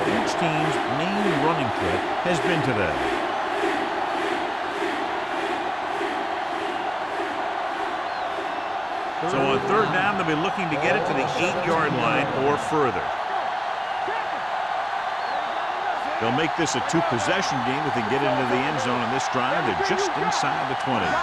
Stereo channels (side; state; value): both; identical; correlation 1.00